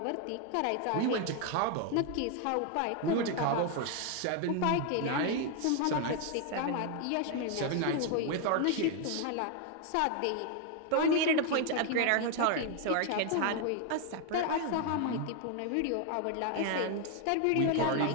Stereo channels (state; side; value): different; both; correlation 0.01